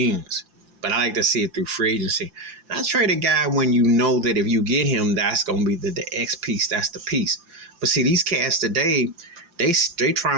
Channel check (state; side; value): late; left; 5.8 ms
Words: But I like to see it through free agency. And I trade a guy when you know that if you get him, that's going to be the X piece. That's the piece. But see, these cats today, they